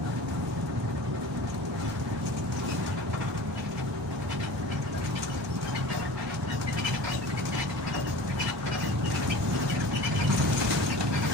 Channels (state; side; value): normal; both; correlation 0.38